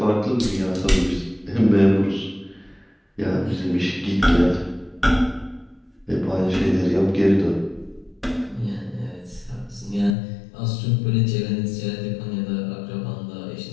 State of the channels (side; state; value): right; drops out; at 10.2 s